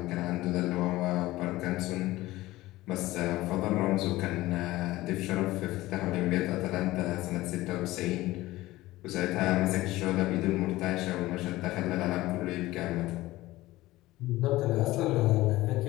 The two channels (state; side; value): quieter; right; 17.8 dB